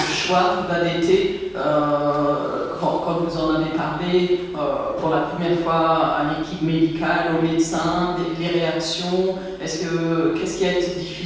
choix d'allaiter, quand vous en avez parlé pour la première fois à l'équipe médicale, aux médecins, les réactions, qu'est-ce qui a été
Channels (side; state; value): both; identical; correlation 1.00